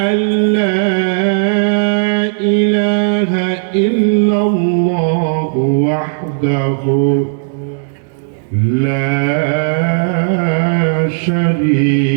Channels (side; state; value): left; silent; digital silence